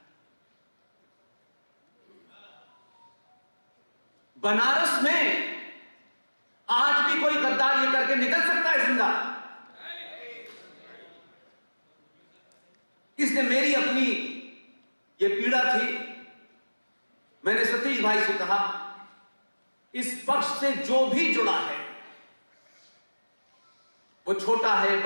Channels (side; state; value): both; inverted; correlation -1.00